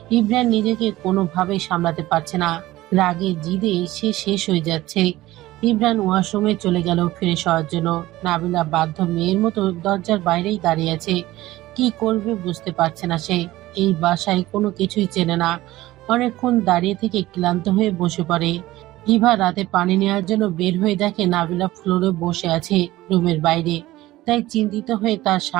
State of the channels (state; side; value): quieter; left; 17.0 dB